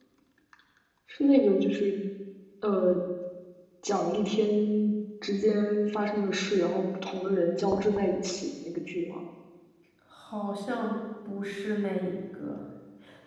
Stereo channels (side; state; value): both; identical; correlation 1.00